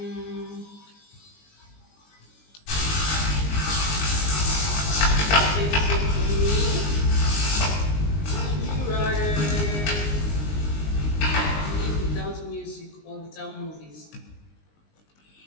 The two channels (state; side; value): late; right; 19 ms